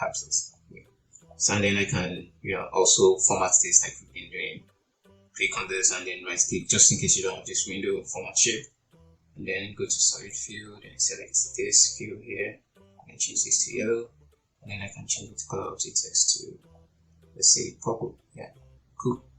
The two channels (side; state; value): both; identical; correlation 1.00